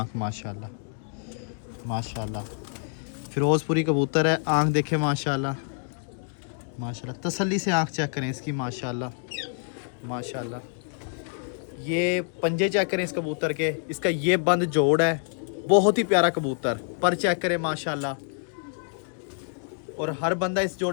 माशाल्लाह माशाल्लाह। फिरोजपुरी कबूतर है, आँख देखें माशाल्लाह माशाल्लाह। तसल्ली से आँख चेक करें इसकी माशाल्लाह माशाल्लाह। ये पंजे चेक करें इस कबूतर के, इसका ये बंद जोड़ है, बहुत ही प्यारा कबूतर। पर चेक करें माशाल्लाह। और हर बंदा इस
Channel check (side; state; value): right; silent; 60 dB below the other